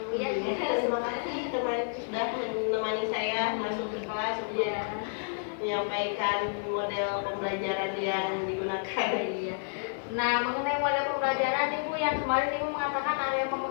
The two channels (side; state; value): right; silent; digital silence